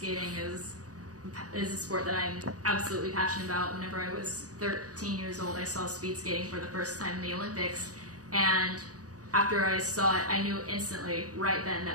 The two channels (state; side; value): late; left; 0.67 ms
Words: is a sport that I'm absolutely passionate about. Whenever I was 13 years old, I saw speed skating for the first time in the Olympics, and after I saw it, I knew instantly, right then,